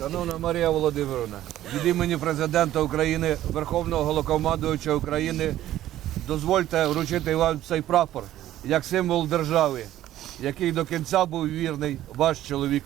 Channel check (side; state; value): left; quieter; 13.3 dB